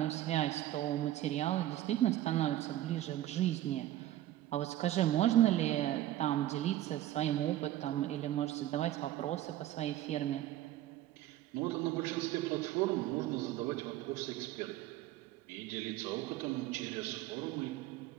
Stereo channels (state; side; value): quieter; left; 13.8 dB